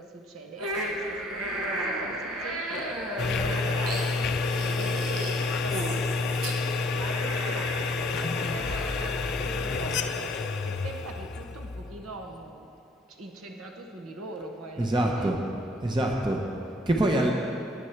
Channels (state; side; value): normal; both; correlation 0.62